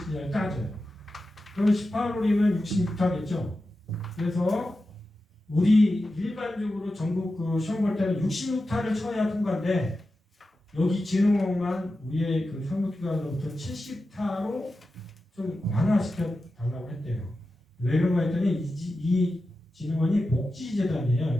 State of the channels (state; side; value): normal; both; correlation 0.92